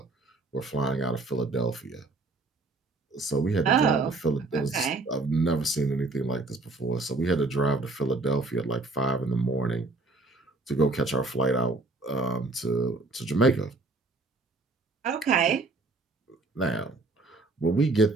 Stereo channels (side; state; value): left; quieter; 3.3 dB